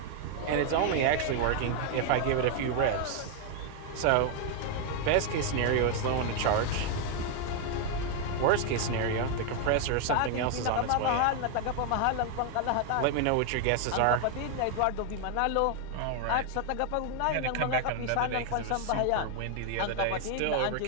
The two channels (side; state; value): both; different; correlation 0.00